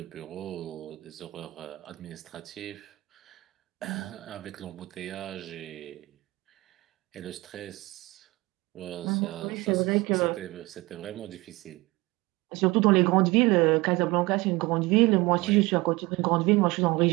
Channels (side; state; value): left; quieter; 21.8 dB